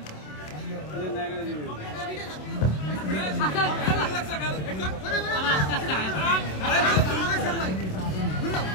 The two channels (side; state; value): right; late; 27 ms